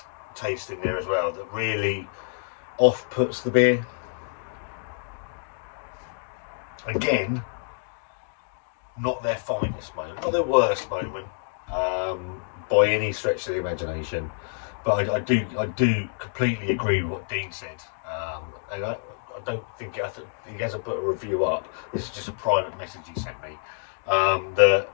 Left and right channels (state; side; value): silent; right; digital silence